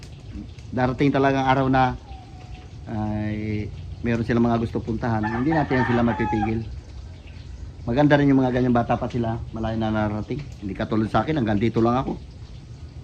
darating talaga ang araw na ay meron silang mga gusto puntahan. Hindi natin sila mapipigil. Maganda rin yung mga ganyang bata pa sila. Malayo na narating. Hindi katulad sa akin, hanggang dito lang ako.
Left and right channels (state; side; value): identical; both; correlation 1.00